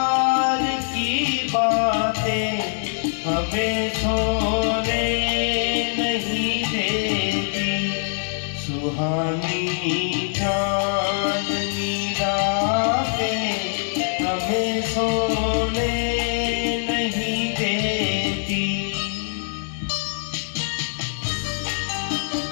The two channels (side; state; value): right; silent; digital silence